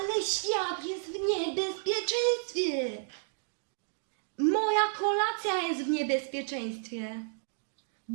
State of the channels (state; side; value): silent; left; digital silence